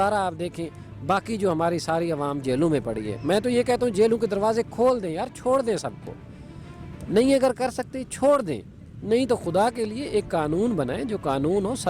را آپ دیکھیں باقی جو ہماری ساری عوام جیلوں میں پڑی ہے. میں تو یہ کہتا ہوں جیلوں کے دروازے کھول دیں یار، چھوڑ دیں سب کو. نہیں اگر کر سکتے چھوڑ دیں، نہیں تو خدا کے لیے ایک قانون بنائیں جو قانون ہو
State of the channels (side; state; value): both; identical; correlation 1.00